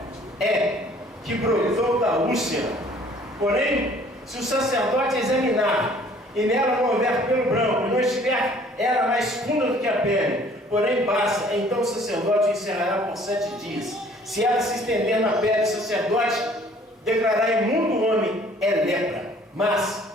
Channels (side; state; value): both; normal; correlation 0.55